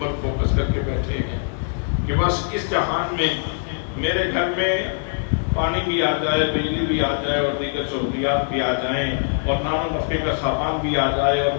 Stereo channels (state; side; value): silent; right; digital silence